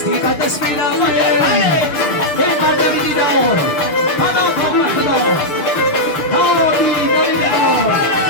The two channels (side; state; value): right; late; 6.5 ms